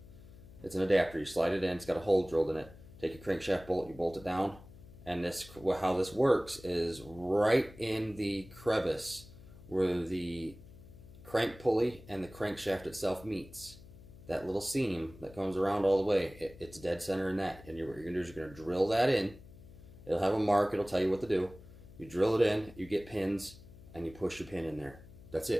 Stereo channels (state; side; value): noise; left; hum, 19 dB below the sound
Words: it's an adapter. You slide it in. It's got a hole drilled in it. Take your crankshaft bolt, you bolt it down, and how this works is right in the crevice where the crank pulley and the crankshaft itself meets. That little seam that comes around all the way, it's dead center in that. And what you're gonna do is you're gonna drill that in. It'll have a mark. It'll tell you what to do. You drill it in. You get pins, and you push your pin in there. That's